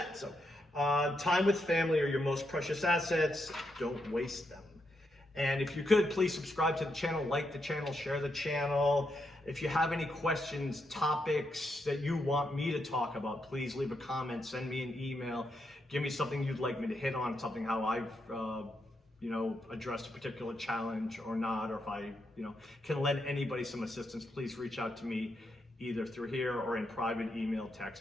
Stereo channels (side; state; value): both; normal; correlation 0.82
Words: So time with family are your most precious assets. Don't waste them. And if you could, please subscribe to the channel, like the channel, share the channel. If you have any questions, topics that you want me to talk about, please leave a comment, send me an email, give me something you'd like me to hit on, something how I've you know, addressed a particular challenge or not, or if I, you know, can lend anybody some assistance, please reach out to me either through here or in private email,